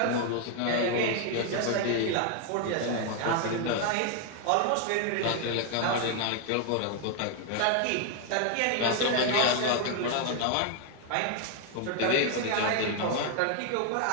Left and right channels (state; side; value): different; both; correlation 0.00